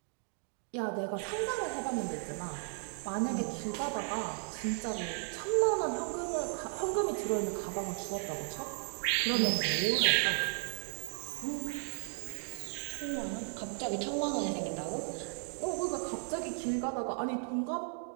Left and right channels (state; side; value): silent; left; 54 dB below the other